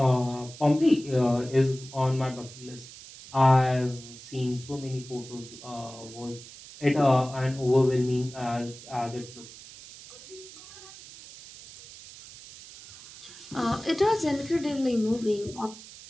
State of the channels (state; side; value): noise; right; hiss, 17 dB below the sound